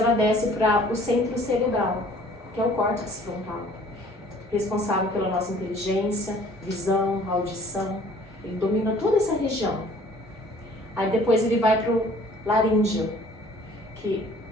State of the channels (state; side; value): normal; both; correlation 0.53